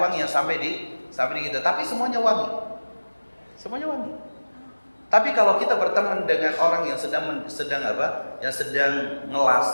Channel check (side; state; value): both; inverted; correlation -1.00